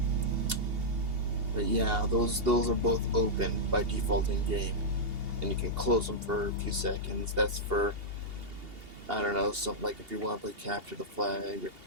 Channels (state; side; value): late; left; 2.8 ms